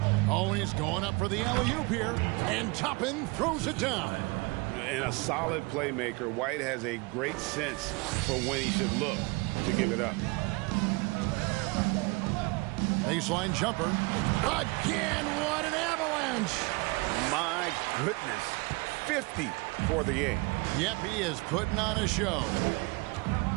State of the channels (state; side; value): quieter; left; 26.7 dB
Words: Oh, he's going up for the alley-oop here. And Toppin throws it down. And a solid playmaker. White has a great sense for when he should look to give it up. Baseline jumper. Again, what an avalanche. My goodness. 50 for the game. Yep, he is putting on a show.